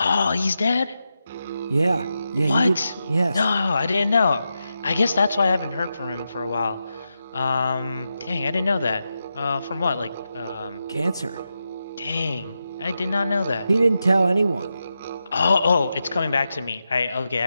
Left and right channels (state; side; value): inverted; both; correlation -0.88